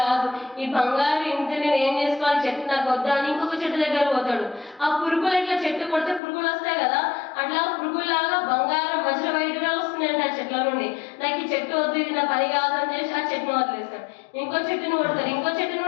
కాదు, ఈ బంగారు ఇంత నేను ఏం చేసుకోవాలి, చెట్టు నాకు వద్దా అని ఇంకొక చెట్టు దగ్గర పోతాడు. ఆ పురుగులు ఇట్లా చెట్టు కొడితే పురుగులు వస్తాయి కదా, అట్లా పురుగులాగా బంగారం వజ్ర వైడూర్యాలు వస్తున్నాయంట ఆ చెట్ల నుండి. నాకు ఈ చెట్టు వద్దు, ఇది నా పని కాదు అని చేసి ఆ చెట్టును వదిలేస్తాడు. ఇంకో చెట్టును కొడతారు, ఇంకో చెట్టును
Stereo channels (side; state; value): right; drops out; at 6.2 s